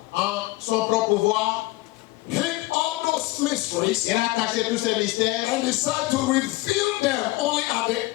en son propre pouvoir, hid all those mysteries il a caché tous ces mystères and decided to reveal them only at the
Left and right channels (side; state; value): right; quieter; 20.1 dB